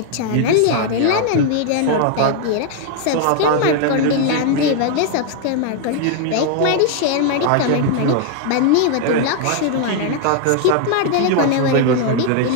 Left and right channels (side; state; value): both; different; correlation 0.00